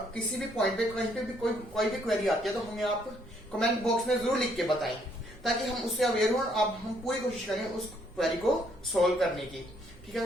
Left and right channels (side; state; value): right; noise; rumble, 24 dB below the sound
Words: किसी भी पॉइंट पे कहीं पे भी कोई भी क्वेरी आती है तो हमें आप कमेंट बॉक्स में जरूर लिख के बताएं, ताकि हम उससे अवेयर हो। अब हम पूरी कोशिश करें उस क्वेरी को सॉल्व करने की, ठीक है।